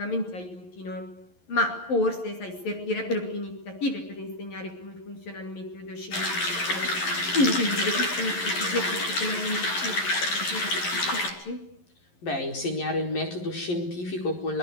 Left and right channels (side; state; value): right; late; 11 ms